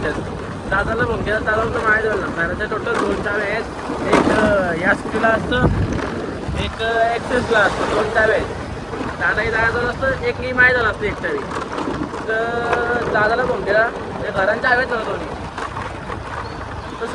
दादाला फोन केला दादा तर माहिती झालं घराच्या टोटल 2 चावे आहेत एक या स्कूटीला असतं एक एक्सेसला असतं 2 चावे आहेत दादाही दादाजवळ असतं एक मी माहीत झालं असतं एक चावी तर दादाला फोन केला ते घरांच्या चाव्याच नव्हतं दोन्ही तर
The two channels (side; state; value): both; identical; correlation 1.00